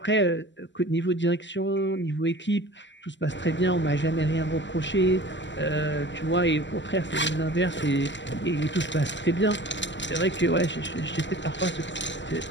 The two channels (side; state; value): right; late; 0.53 ms